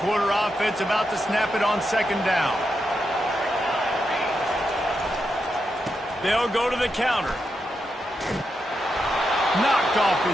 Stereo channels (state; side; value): normal; both; correlation 0.85